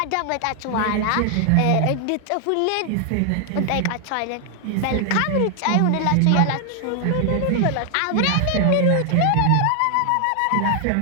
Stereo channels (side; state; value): both; different; correlation 0.00